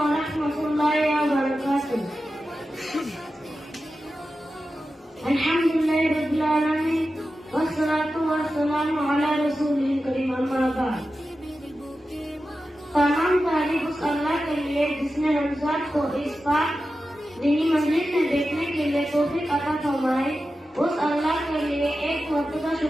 wabarakatuh. Alhamdulillahi rabbil alamin wassalatu wassalamu ala rasulil karim amma ba'd. तमाम तारीफ उस अल्लाह के लिए जिसने रमजान को इस पाक दीनी मंजिल में देखने के लिए तौफीक अता फरमाई। उस अल्लाह के लिए एक मर्तबा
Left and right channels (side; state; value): both; normal; correlation 0.92